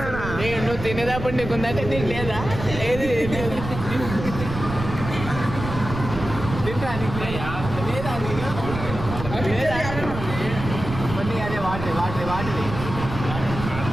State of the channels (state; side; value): noise; right; rumble, 7 dB below the sound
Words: నువ్వు తినేటప్పుడు నీకుందంటే నీకు లేదా ఏది తింటా లేదా నీకు? లేదా నీకు? కొన్ని అదే వాటర్